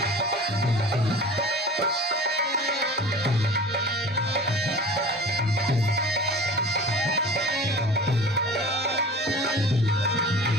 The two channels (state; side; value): normal; both; correlation 0.39